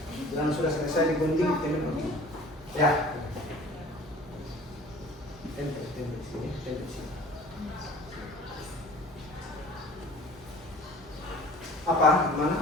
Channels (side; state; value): both; normal; correlation 0.46